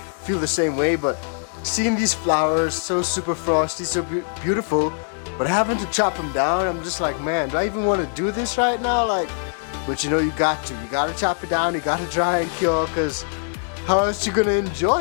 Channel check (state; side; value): silent; right; 64 dB below the other